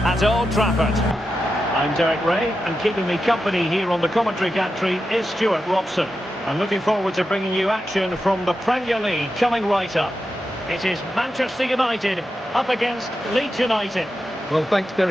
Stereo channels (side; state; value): both; normal; correlation 0.89